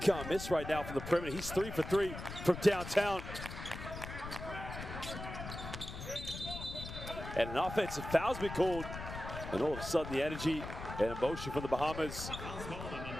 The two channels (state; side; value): noise; left; rumble, 9 dB below the sound